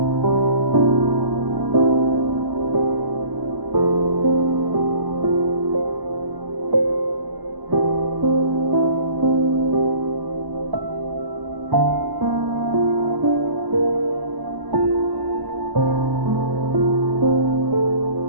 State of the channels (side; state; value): left; late; 1.0 ms